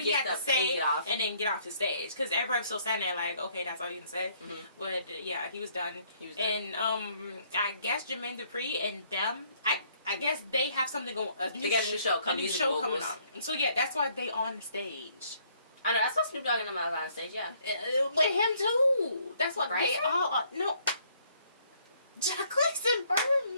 he had to say and then get off the stage. Because everybody was still standing there like, okay, that's all you can say. Mm-hmm. But yeah, he was done. And I guess Jermaine Dupri and them, I guess they have something going. They got a new show coming on. And so yeah, that's why they on the stage. I know, that's why Snoop Dogg and them are on stage. Yeah, with him too. That's what they all. No, Jacquees and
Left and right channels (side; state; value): both; inverted; correlation -0.65